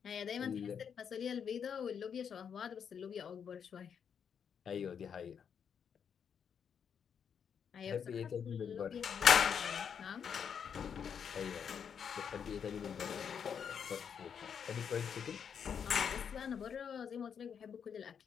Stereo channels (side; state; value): right; quieter; 7.4 dB